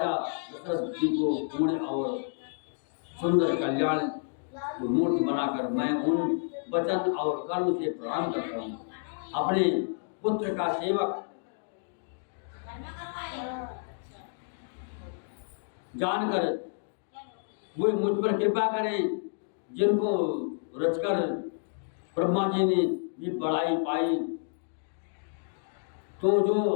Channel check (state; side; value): silent; right; digital silence